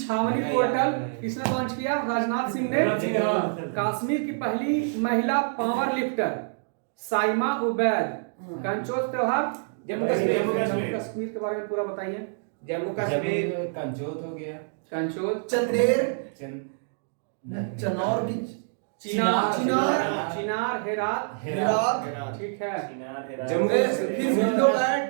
पोर्टल किसने लॉन्च किया? राजनाथ सिंह ने। कश्मीर की पहली महिला पावर लिफ्टर साइमा उबैद। कंचोज त्योहार जम्मू कश्मीर के बारे में पूरा बताइए। जम्मू कश्मीर कंचोत हो गया। कंचोज, चंदेर। चंद चनौर की चिनार, हेरात। ठीक है। जम्मू फिर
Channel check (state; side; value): silent; left; digital silence